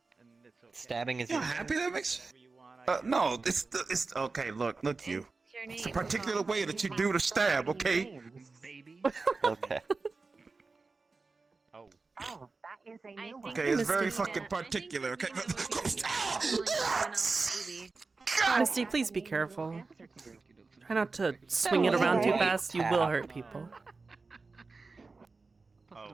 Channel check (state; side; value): quieter; left; 4.0 dB